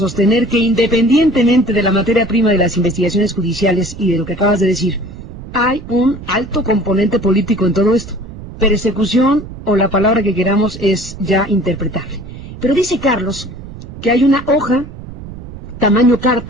que, independientemente de la materia prima de las investigaciones judiciales y de lo que acabas de decir, hay un alto componente político en todo esto. Persecución, o la palabra que queramos, es ya interpretable. Pero dice Carlos que hay una hoja, tamaño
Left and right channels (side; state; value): right; noise; rumble, 14 dB below the sound